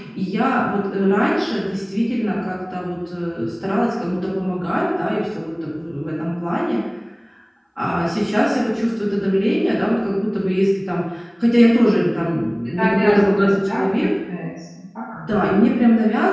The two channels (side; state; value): both; identical; correlation 1.00